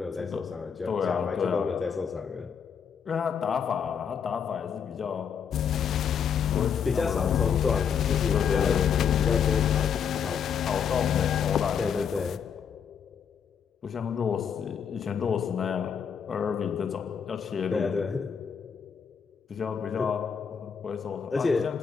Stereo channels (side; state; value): right; quieter; 7.2 dB